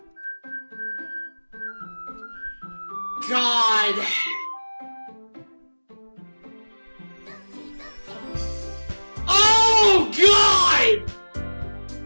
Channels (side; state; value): both; inverted; correlation -1.00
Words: God! Oh, God!